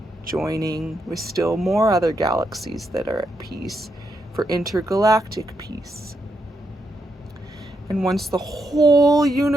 joining with still more other galaxies that are at peace for intergalactic peace. And once the whole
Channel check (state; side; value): normal; both; correlation 0.81